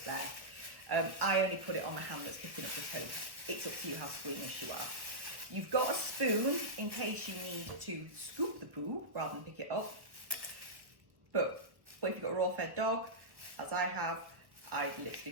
there. I only put it on the hand that's picking up the poo. It's up to you how squeamish you are. You've got a spoon in case you need to scoop the poo rather than pick it up. But if you've got a raw fed dog, as I have, I'd literally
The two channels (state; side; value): late; left; 1.1 ms